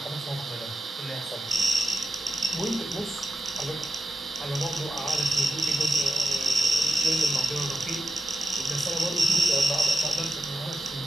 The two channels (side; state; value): both; normal; correlation 0.88